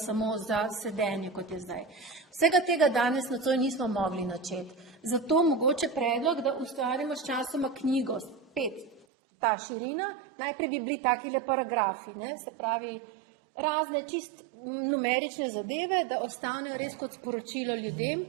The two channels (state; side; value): drops out; left; at 9.1 s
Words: samo za sedenje, kot je zdaj. Vsega tega danes nocoj nismo mogli načeti. Zato mogoče predlog, da ustvarimo s časoma knjigo, 5. Ta širina, najprej bi bili takile paragrafi, ne? Se pravi, razne čist numerične zadeve, da ostanejo res kot sporočilo ljudem,